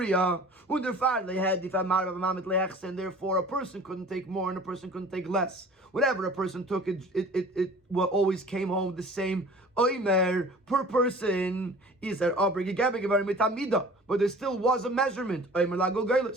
and therefore a person couldn't take more and a person couldn't take less. Whatever a person took, it always came home the same oimer per person. But there still was a measurement. There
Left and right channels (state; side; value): normal; both; correlation 0.45